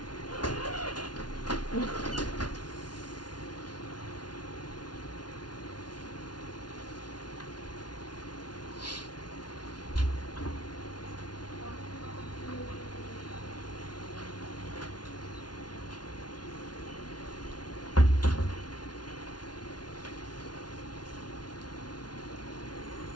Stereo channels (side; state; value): right; late; 0.70 ms